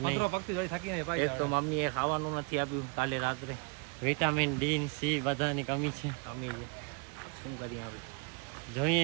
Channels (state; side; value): quieter; left; 33.5 dB